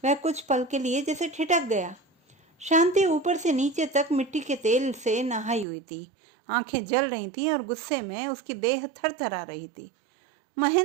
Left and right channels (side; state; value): left; drops out; at 5.7 s